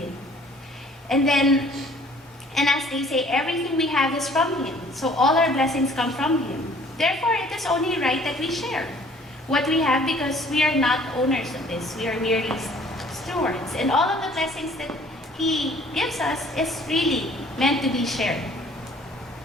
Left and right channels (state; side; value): normal; both; correlation 0.55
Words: And as they say, everything we have is from Him. So all our blessings come from Him. Therefore, it is only right that we share what we have because we are not owners of this. We are merely stewards. And all of the blessings that He gives us is really meant to be shared.